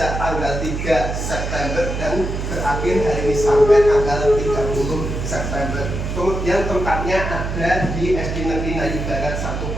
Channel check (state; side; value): noise; right; hum, 4 dB below the sound